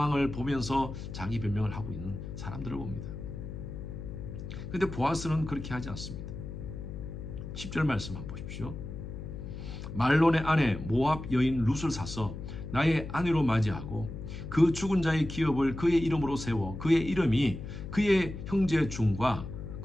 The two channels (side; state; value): left; noise; hum, 9 dB below the sound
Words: 보면서 자기 변명을 하고 있는 사람들을 봅니다. 그런데 보아스는 그렇게 하지 않습니다. 10절 말씀 한번 보십시오. 말론의 아내 모압 여인 룻을 사서 나의 아내로 맞이하고 그 죽은 자의 기업을 그의 이름으로 세워 그의 이름이 그의 형제 중과